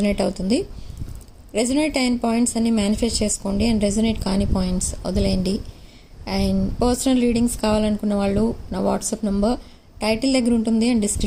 అవుతుంది. రెజొనేట్ అయిన పాయింట్స్ అన్ని మేనిఫెస్ట్ చేసుకోండి అండ్ రెజొనేట్ కాని పాయింట్స్ వదిలేయండి. అండ్ పర్సనల్ రీడింగ్స్ కావాలనుకున్న వాళ్ళు నా వాట్సాప్ నెంబర్ టైటిల్ దగ్గర ఉంటుంది అండ్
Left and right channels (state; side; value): identical; both; correlation 1.00